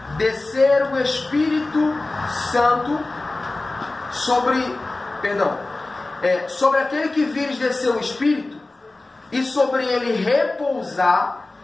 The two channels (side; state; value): right; quieter; 3.1 dB